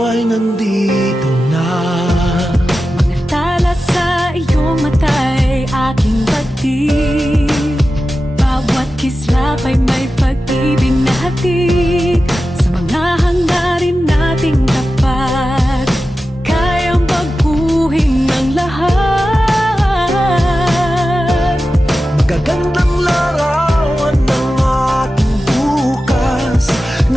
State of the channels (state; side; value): normal; both; correlation 0.93